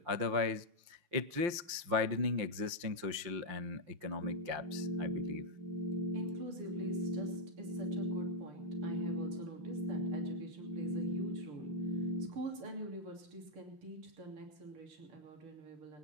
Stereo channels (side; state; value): left; late; 5.8 ms